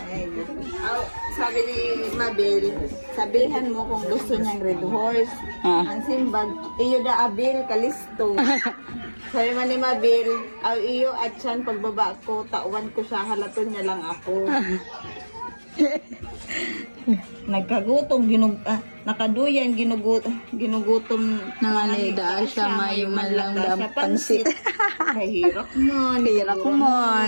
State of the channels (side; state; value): both; inverted; correlation -1.00